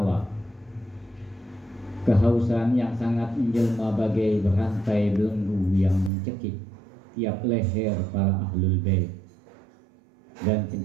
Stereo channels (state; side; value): drops out; left; at 6.1 s